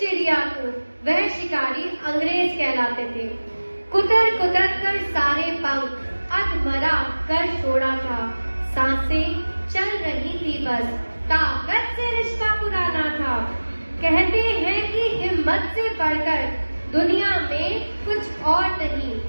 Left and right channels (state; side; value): inverted; both; correlation -1.00